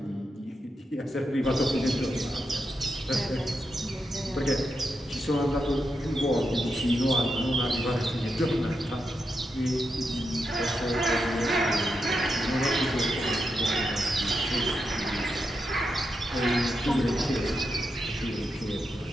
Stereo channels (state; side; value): normal; both; correlation 0.85